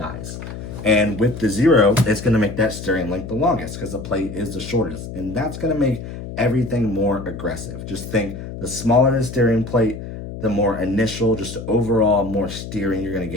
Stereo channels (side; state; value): left; noise; hum, 10 dB below the sound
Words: And with the zero, it's going to make that steering link the longest because the plate is the shortest. And that's going to make everything more aggressive. Just think, the smaller the steering plate, the more initial, just overall more steering you're going to